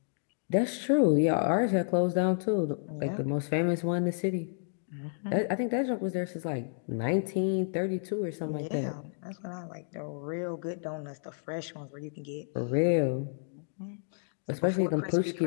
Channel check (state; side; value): silent; right; digital silence